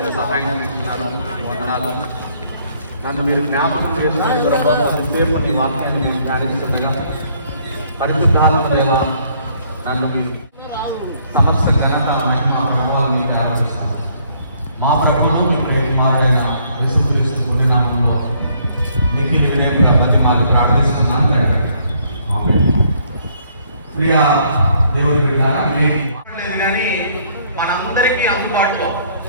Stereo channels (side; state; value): both; inverted; correlation -0.66